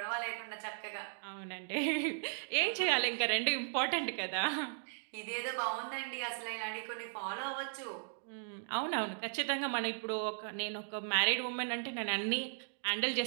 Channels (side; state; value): left; silent; digital silence